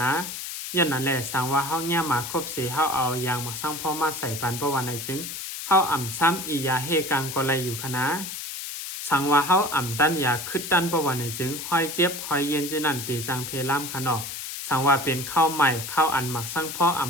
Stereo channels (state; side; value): noise; left; hiss, 7 dB below the sound